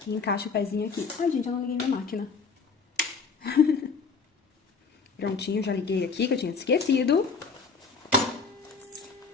e encaixo o pezinho aqui. Ai, gente, eu não liguei minha máquina. Prontinho, já liguei aqui, que eu tinha esquecido.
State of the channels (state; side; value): quieter; right; 5.0 dB